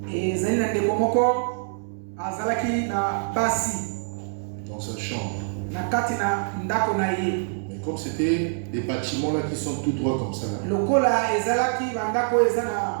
Dans sa chambre. Mais comme c'était des bâtiments là qui sont tout droits comme ça. Là,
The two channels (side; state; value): left; silent; 62 dB below the other